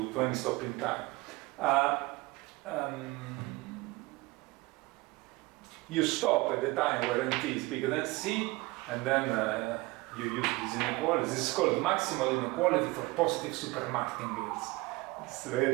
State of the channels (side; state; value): left; quieter; 22.4 dB